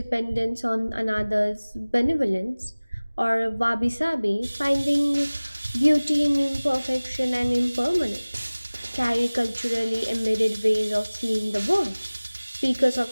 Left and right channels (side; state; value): both; inverted; correlation -1.00